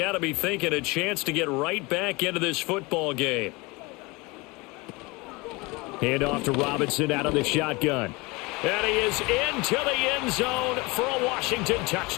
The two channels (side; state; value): right; quieter; 24.9 dB